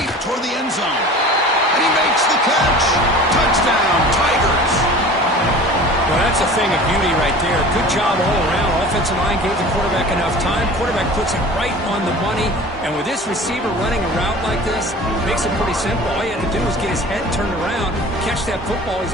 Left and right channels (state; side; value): normal; both; correlation 0.40